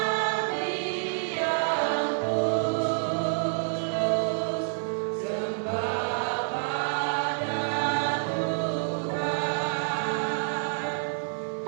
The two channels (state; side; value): silent; left; 58 dB below the other